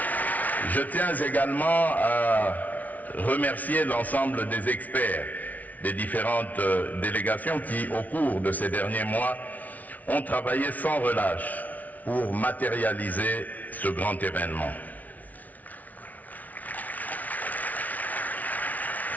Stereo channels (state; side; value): late; right; 0.074 ms